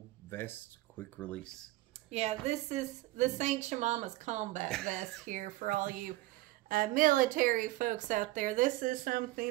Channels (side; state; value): left; quieter; 18.1 dB